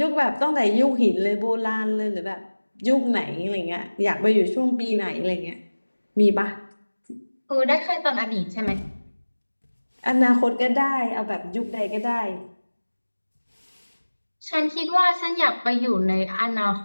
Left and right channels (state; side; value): inverted; both; correlation -1.00